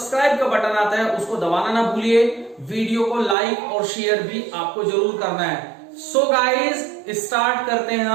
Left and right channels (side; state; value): left; drops out; at 3.4 s